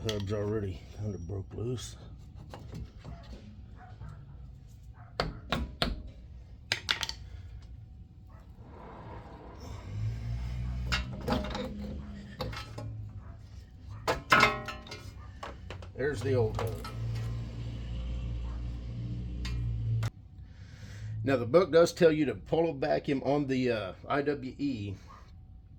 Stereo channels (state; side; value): identical; both; correlation 1.00